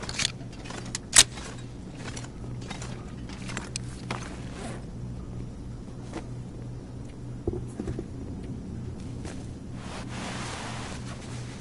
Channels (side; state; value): both; identical; correlation 1.00